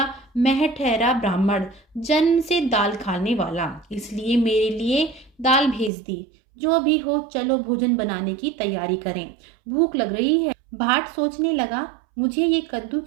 मैं ठहरा ब्राह्मण, जन्म से दाल खाने वाला, इसलिए मेरे लिए दाल भेज दी। जो भी हो चलो भोजन बनाने की तैयारी करें, भूख लग रही है। भाट सोचने लगा, मुझे ये कद्दू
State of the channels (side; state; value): left; drops out; at 5.9 s